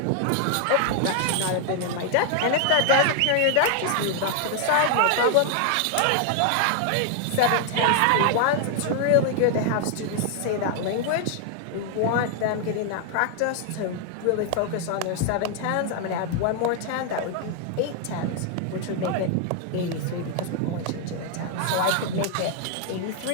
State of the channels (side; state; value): both; different; correlation 0.00